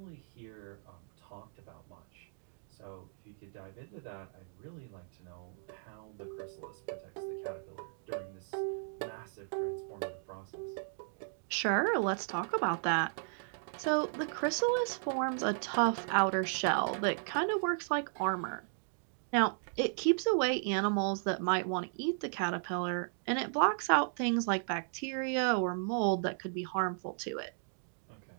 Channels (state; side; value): silent; left; digital silence